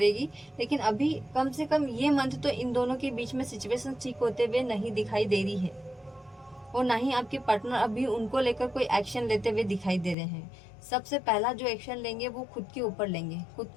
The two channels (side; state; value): right; drops out; at 10.2 s